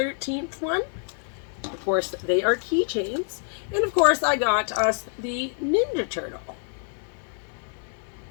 one. Of course, they are keychains. And of course, I got us the Ninja Turtle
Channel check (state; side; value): silent; right; 56 dB below the other